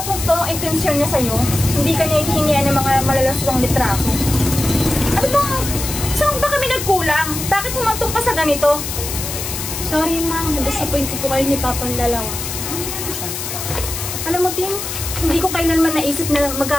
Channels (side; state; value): left; noise; hiss, 6 dB below the sound